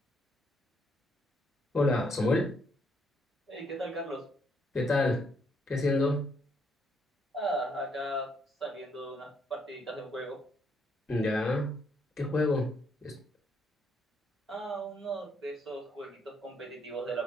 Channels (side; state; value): both; normal; correlation 0.72